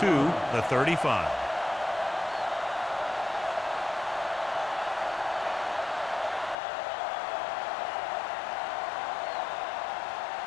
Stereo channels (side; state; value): right; drops out; at 6.6 s